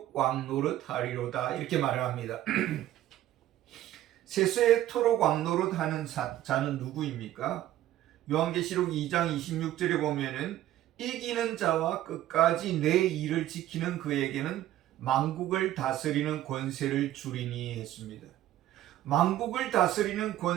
왕노릇 하리로다 이렇게 말을 합니다. 세세토록 왕노릇 하는 자는 누구입니까? 요한계시록 2장 26절에 보면은 이기는 자와 끝까지 내 일을 지키는 그에게는 만국을 다스리는 권세를 주리니 했습니다. 만국을 다스리는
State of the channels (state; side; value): quieter; left; 13.4 dB